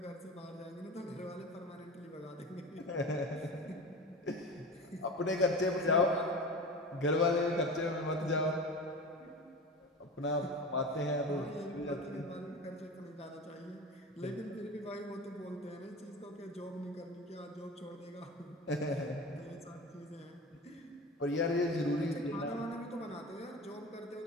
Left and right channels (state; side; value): normal; both; correlation 0.32